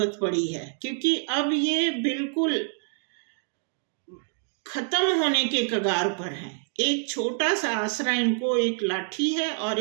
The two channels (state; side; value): silent; left; 60 dB below the other